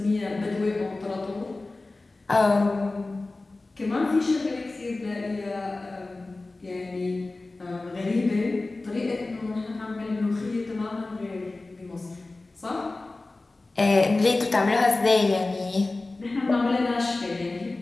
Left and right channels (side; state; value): right; quieter; 3.2 dB